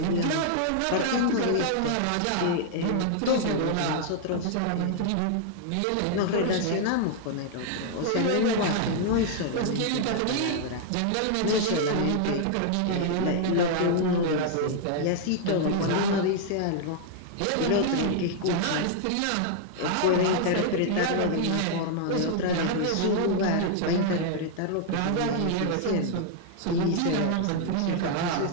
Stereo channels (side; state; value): both; different; correlation -0.01